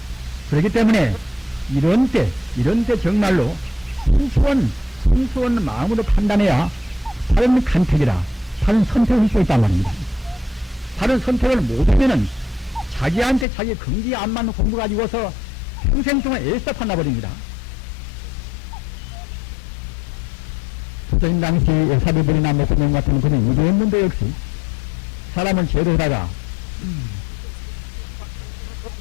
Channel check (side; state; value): right; drops out; at 13.5 s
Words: 그렇기 때문에 이런 때 정말로 순수한 마음으로 판단해야 바른 간택이라 바른 선택을 할 수 있단 말입니다. 바른 선택을 못하면은 자기한테 자기 긍지에 안 맞는 공부 가지고서 평생 동안 애써 판나버립니다. 조선 당시 사비들이나 목사님 같은 그런 이랬는데 역시 사람을 제도하다가